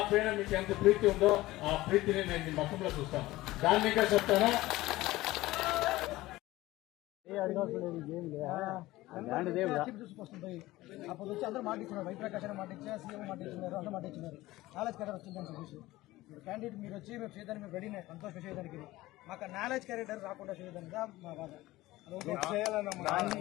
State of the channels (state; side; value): quieter; right; 17.9 dB